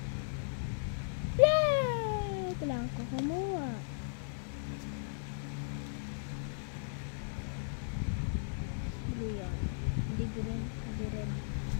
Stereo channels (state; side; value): silent; right; digital silence